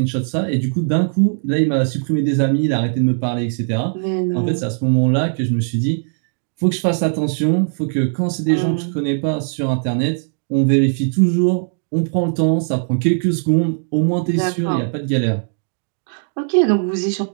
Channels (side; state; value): left; silent; 67 dB below the other